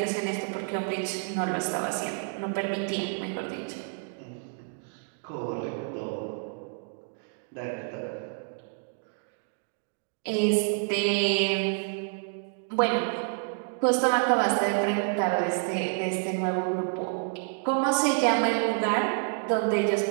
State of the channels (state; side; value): silent; left; 55 dB below the other